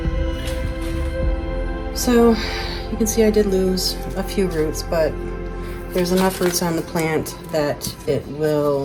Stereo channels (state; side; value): identical; both; correlation 1.00